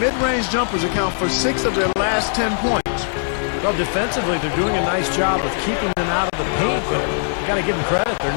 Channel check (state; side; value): silent; right; digital silence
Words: jumpers account for 6 of their last 10 points. Well, defensively, they're doing a nice job of keeping them out of the paint, but you got to give them credit. They're